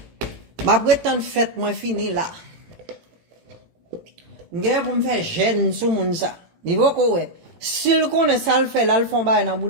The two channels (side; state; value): left; late; 18 ms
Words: Ma prétend fête moi fini là. M'gè pour me faire gêne sous moun ça. Niveau ko ouais. S'il connaît ça le fait là le font ba dans